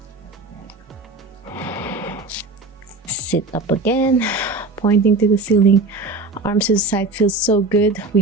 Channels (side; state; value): left; quieter; 3.4 dB